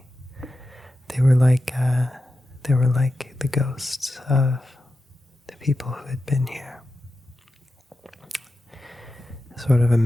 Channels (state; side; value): normal; both; correlation 0.91